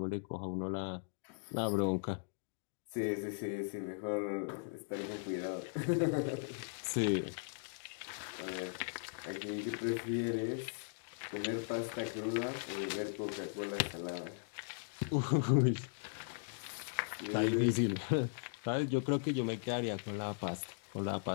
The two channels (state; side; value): silent; right; digital silence